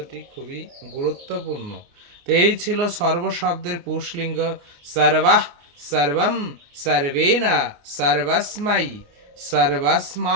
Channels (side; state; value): left; late; 29 ms